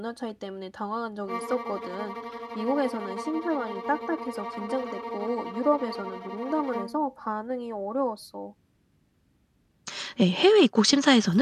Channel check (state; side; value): identical; both; correlation 1.00